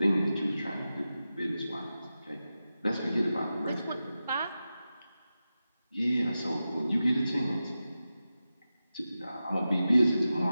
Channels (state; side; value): inverted; both; correlation -0.93